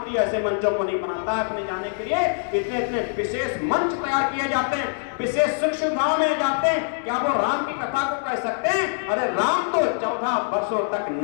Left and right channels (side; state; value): right; silent; digital silence